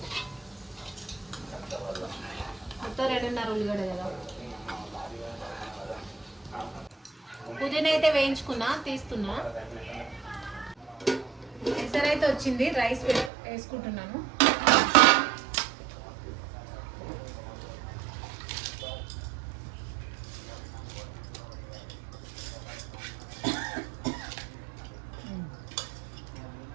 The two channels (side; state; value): left; drops out; at 13.3 s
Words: మొత్తం 2.5 ఉల్లిగడ్డ కదా. పుదీనా అయితే వేయించుకున్నా, తీస్తున్నా. ఎసరైతే వచ్చింది, రైస్ వేసుకుంటున్నాను.